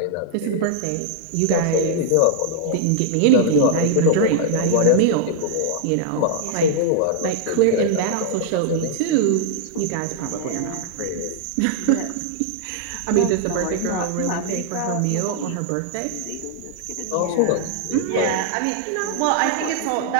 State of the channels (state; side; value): different; both; correlation -0.01